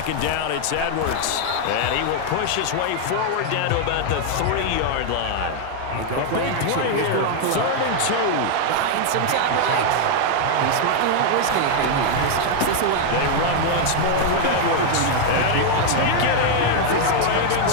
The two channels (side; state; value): both; different; correlation 0.00